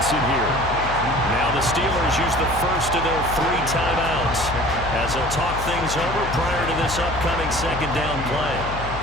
here. Now the Steelers use the first of their 3 timeouts as they'll talk things over prior to this upcoming second down play.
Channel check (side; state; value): left; noise; hum, 8 dB below the sound